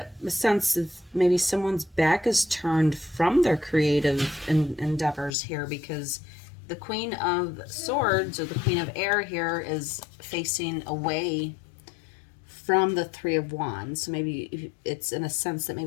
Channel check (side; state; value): right; drops out; at 5.4 s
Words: a sense of maybe someone's back is turned from their creative endeavors here, because the Queen of Swords, or the Queen of Air here, is facing away from the Three of Wands. So maybe it's in a sense that